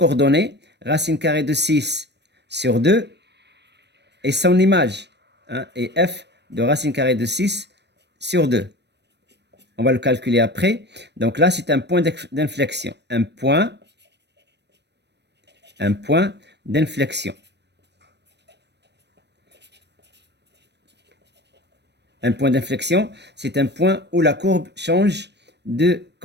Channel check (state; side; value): late; left; 0.50 ms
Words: racine carrée de 6 sur 2 et son image. Hein, et f de racine carrée de 6 sur 2. On va le calculer après. Donc là, c'est un point d'inflexion. Un point d'inflexion. Un point d'inflexion, c'est un point où la courbe change de